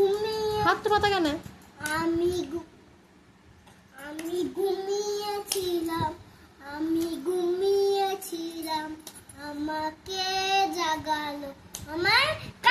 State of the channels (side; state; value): both; identical; correlation 1.00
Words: হাত তো পাতা কেন? আমি ঘুমিয়েছিলাম, আমি ঘুমিয়েছিলাম, আমাকে জাগালো আমার